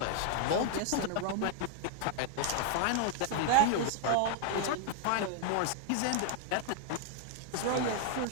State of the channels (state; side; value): different; both; correlation 0.00